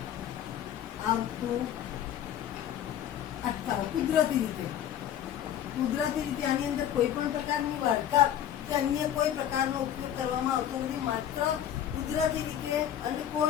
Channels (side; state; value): right; quieter; 10.4 dB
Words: આવતું અટકાવ કુદરતી રીતે આની અંદર કોઈ પણ પ્રકારની વાર્તા કે અન્ય કોઈ પ્રકારનો ઉપયોગ કરવામાં આવતો નથી. માત્ર કુદરતી રીતે